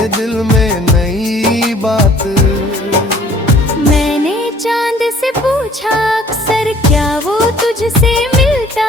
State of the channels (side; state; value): both; normal; correlation 0.55